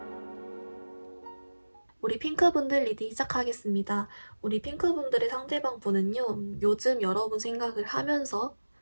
우리 핑크분들 리딩 시작하겠습니다. 우리 핑크분들의 상대방 분은요, 요즘 여러분 생각을 하면서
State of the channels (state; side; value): inverted; both; correlation -1.00